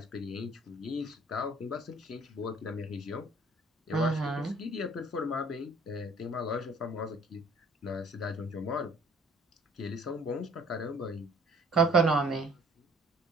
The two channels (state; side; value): normal; both; correlation 0.55